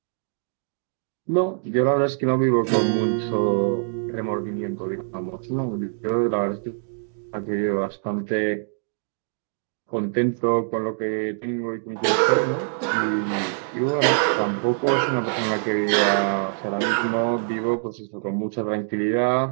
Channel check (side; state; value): left; silent; digital silence